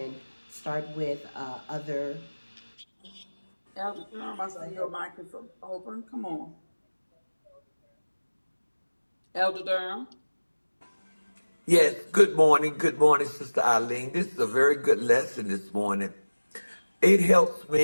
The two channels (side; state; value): both; inverted; correlation -1.00